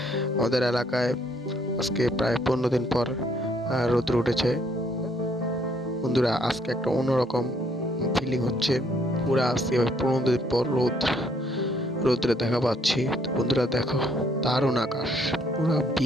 আমাদের এলাকায় আজকে প্রায় 15 দিন পর রোদ উঠেছে। বন্ধুরা, আজকে একটা অন্যরকম ফিলিং হচ্ছে। পুরা আজকে 15 দিন পর রোদ্রে দেখা পাচ্ছি। তো বন্ধুরা দেখো, দারুণ আকাশ, পুরা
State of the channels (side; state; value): both; normal; correlation 0.67